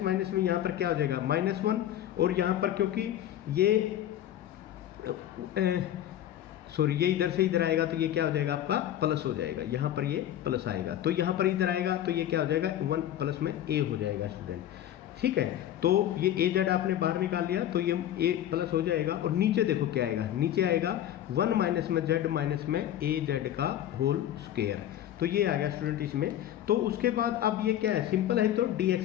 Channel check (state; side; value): quieter; right; 11.7 dB